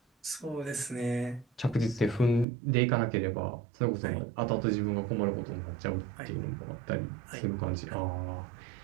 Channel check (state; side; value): drops out; left; at 2.5 s